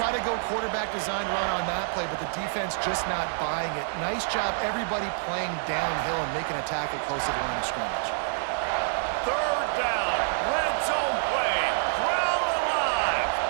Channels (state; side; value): silent; left; digital silence